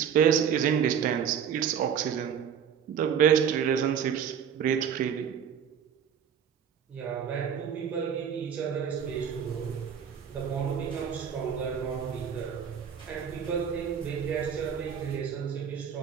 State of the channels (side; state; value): left; quieter; 8.0 dB